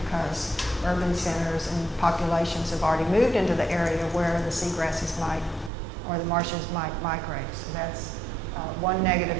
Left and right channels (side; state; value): left; drops out; at 5.7 s